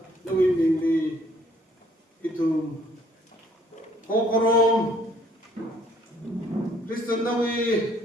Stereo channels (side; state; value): both; normal; correlation 0.63